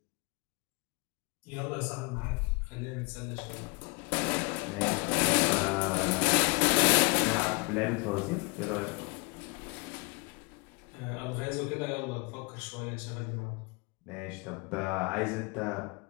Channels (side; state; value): right; quieter; 29.7 dB